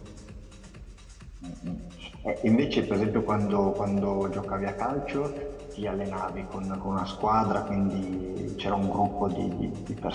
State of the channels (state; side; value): identical; both; correlation 1.00